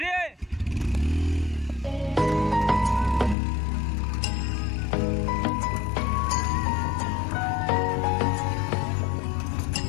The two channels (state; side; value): drops out; right; at 3.4 s